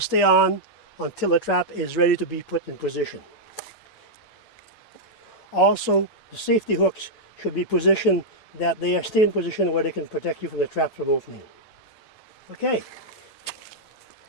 on until the trap is ready to be put in position. Also, the safety hooks should be positioned that they are still in position where they can protect you from the trap from opening. Okay.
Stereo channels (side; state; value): right; late; 6.5 ms